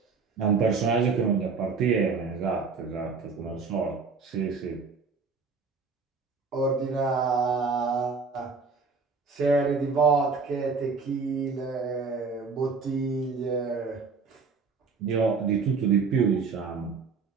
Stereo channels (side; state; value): left; quieter; 4.8 dB